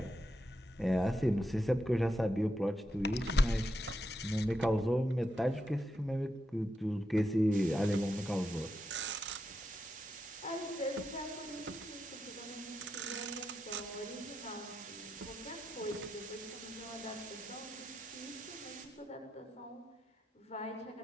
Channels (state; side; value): normal; both; correlation 0.85